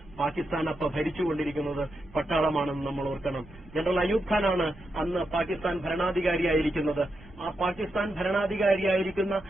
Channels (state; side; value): noise; right; rumble, 22 dB below the sound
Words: പാകിസ്ഥാൻ അപ്പോൾ ഭരിച്ചുകൊണ്ടിരിക്കുന്നത് പട്ടാളമാണെന്ന് നമ്മൾ ഓർക്കണം. ജനറൽ അയൂബ് ഖാനാണ് അന്ന് പാകിസ്ഥാൻ ഭരണാധികാരിയായിരിക്കുന്നത്. ആ പാകിസ്ഥാൻ ഭരണാധികാരിയായിരിക്കുന്ന